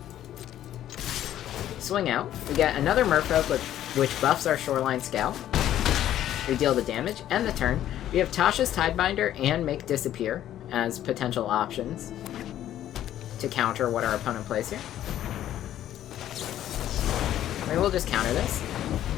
Swing out. We get another Merfolk which buffs our Shoreline Scout. We deal the damage and the turn. We have Tasha's Tidebinder and Make Disappear as potential options to counter what our opponent plays here. Maybe we'll just counter this.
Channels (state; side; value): quieter; right; 12.0 dB